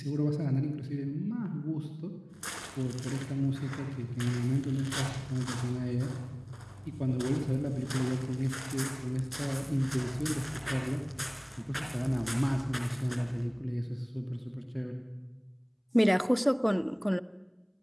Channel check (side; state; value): both; identical; correlation 1.00